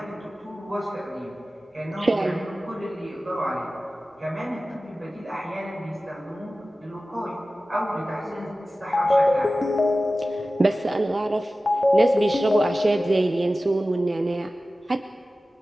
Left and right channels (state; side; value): normal; both; correlation 0.96